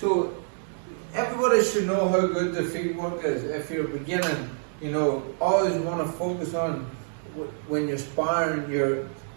everybody should know how good the feet work is. If you're beginning, always want to focus on when you're sparring,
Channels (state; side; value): silent; left; digital silence